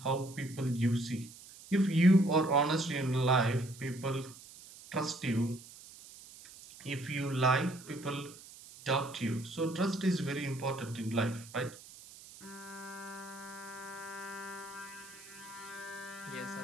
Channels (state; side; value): noise; right; hiss, 18 dB below the sound